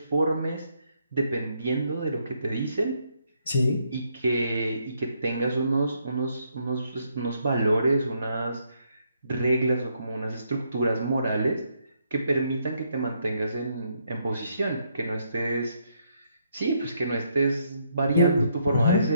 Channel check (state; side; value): inverted; both; correlation -0.74